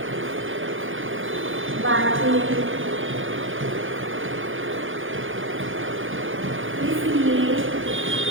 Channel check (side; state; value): left; late; 0.58 ms